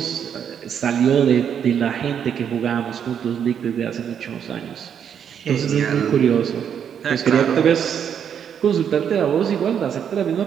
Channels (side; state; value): left; quieter; 8.3 dB